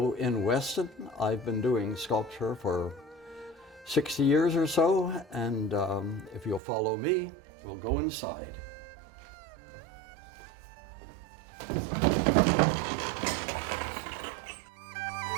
in Weston. I've been doing sculpture for 60 years or so, and if you'll follow me, we'll go inside.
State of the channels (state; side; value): drops out; left; at 6.6 s